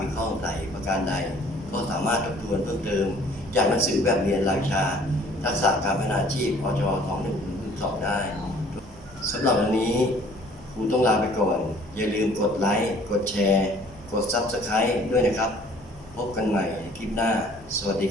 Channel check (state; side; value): noise; right; hum, 21 dB below the sound